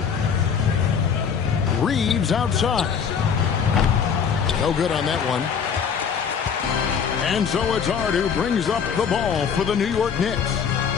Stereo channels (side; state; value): right; quieter; 6.8 dB